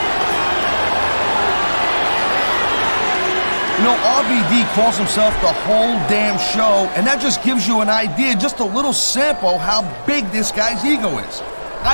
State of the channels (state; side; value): inverted; both; correlation -1.00